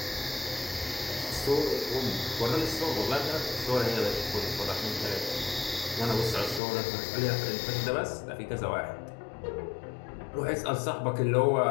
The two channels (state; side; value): drops out; right; at 6.6 s